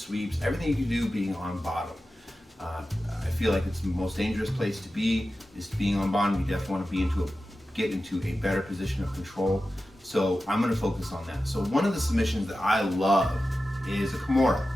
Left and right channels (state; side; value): normal; both; correlation 0.93